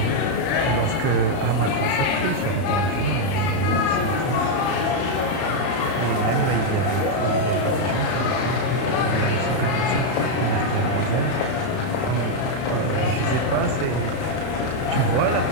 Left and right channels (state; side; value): late; right; 31 ms